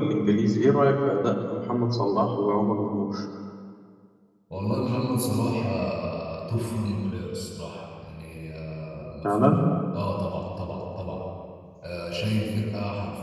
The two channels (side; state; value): both; identical; correlation 1.00